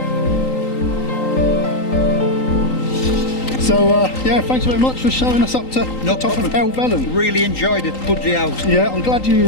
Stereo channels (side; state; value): right; late; 3.8 ms